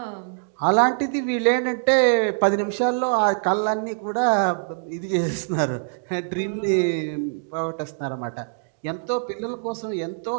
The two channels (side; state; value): left; silent; digital silence